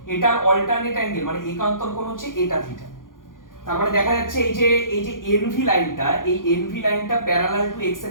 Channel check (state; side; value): late; right; 0.90 ms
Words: এটার অল্টারনেট অ্যাঙ্গেল মানে একান্তর কোণ হচ্ছে এটা থিটা। তার মানে দেখা যাচ্ছে এই যে এনভি লাইনটা, এই এনভি লাইনটা প্যারালাল টু এক্স